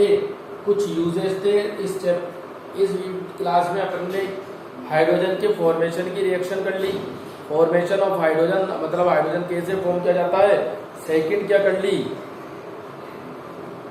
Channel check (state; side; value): identical; both; correlation 1.00